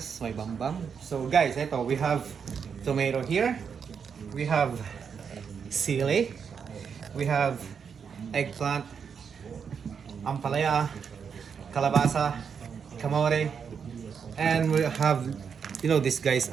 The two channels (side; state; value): left; quieter; 6.6 dB